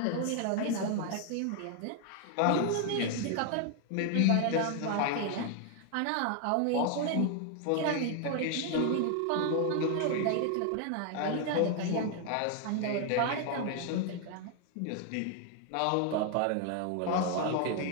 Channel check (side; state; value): both; different; correlation 0.00